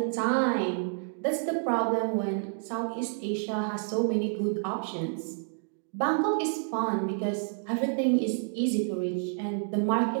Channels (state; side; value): silent; left; digital silence